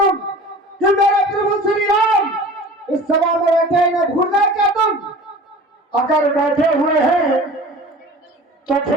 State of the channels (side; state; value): both; normal; correlation 0.41